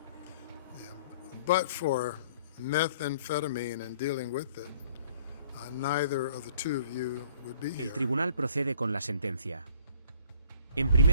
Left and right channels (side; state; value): both; inverted; correlation -0.56